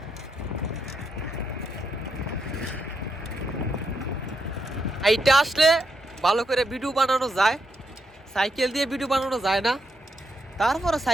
এইটা আসলে ভালো করে ভিডিও বানানো যায়, সাইকেল দিয়ে ভিডিও বানানো যায় না। তারপরে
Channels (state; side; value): normal; both; correlation 0.80